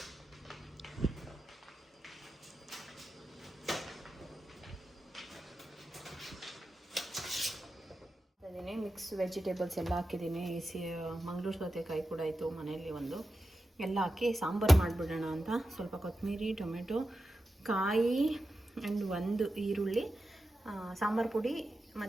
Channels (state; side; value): normal; both; correlation 0.91